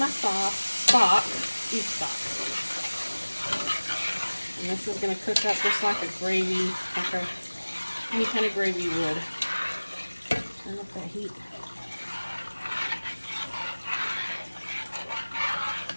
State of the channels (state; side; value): inverted; both; correlation -1.00